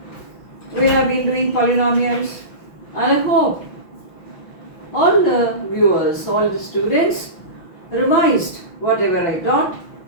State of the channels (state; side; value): late; right; 6.0 ms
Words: We have been doing polynomials and I hope all the viewers, all the students revised whatever I taught